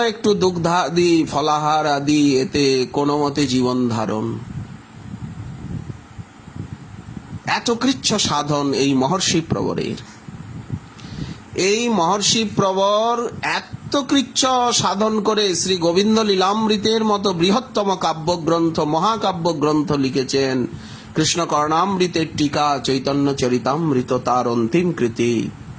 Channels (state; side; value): identical; both; correlation 1.00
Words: একটু দুগ্ধাদি ফলাহার আদি, এতে কোনো মতে জীবন ধারণ। এত কৃচ্ছ সাধন এই মহর্ষি প্রবরের। এই মহর্ষি প্রবর এত কৃচ্ছ সাধন করে শ্রী গোবিন্দ লীলামৃতের মতো বৃহত্তম কাব্যগ্রন্থ, মহাকাব্য গ্রন্থ লিখেছেন। কৃষ্ণ কর্ণামৃতের টিকা, চৈতন্য চরিতামৃত তার অন্তিম কৃতি।